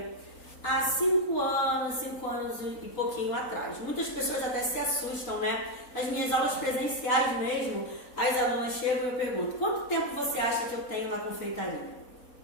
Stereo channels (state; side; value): late; right; 3.8 ms